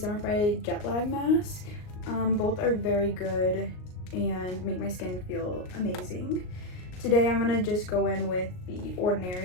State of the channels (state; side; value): late; right; 38 ms